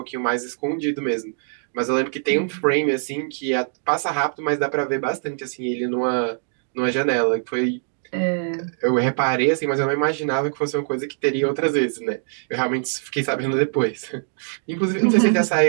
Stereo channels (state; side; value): silent; left; digital silence